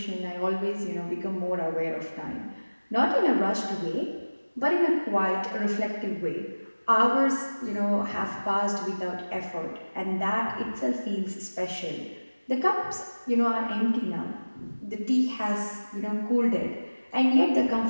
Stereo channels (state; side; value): inverted; both; correlation -1.00